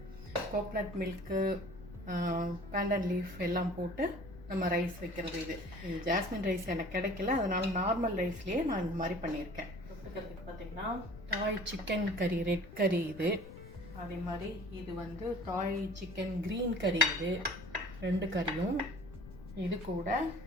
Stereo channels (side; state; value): left; noise; rumble, 15 dB below the sound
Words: Coconut milk, Banton leaf எல்லாம் போட்டு நம்ம ரைஸ் வைக்கிறது. இது ஜாஸ்மின் ரைஸ் எனக்கு கிடைக்கல, அதனால நார்மல் ரைஸ்லேயே நான் இந்த மாதிரி பண்ணியிருக்கேன். தொட்டுக்கிறதுக்கு பார்த்தீங்கன்னா தாய் சிக்கன் கறி, ரெட் கறி இது. அதே மாதிரி இது வந்து தாய் சிக்கன் க்ரீன் கறி. இது 2 கறியும். இது கூட